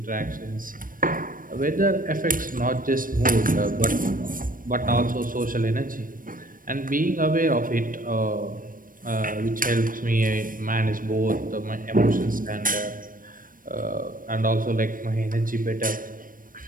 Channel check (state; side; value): late; left; 0.40 ms